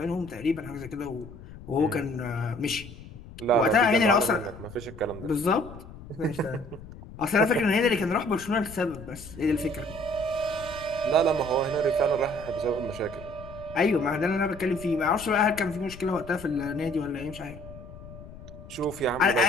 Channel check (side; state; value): left; noise; rumble, 16 dB below the sound